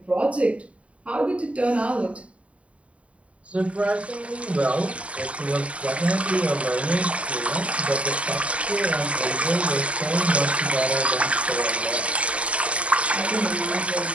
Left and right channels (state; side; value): late; left; 0.064 ms